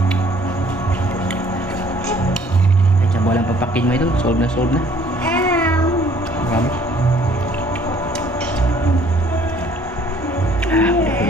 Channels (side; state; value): both; normal; correlation 0.58